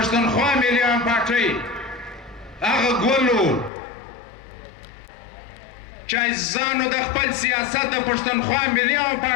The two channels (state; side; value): drops out; right; at 3.7 s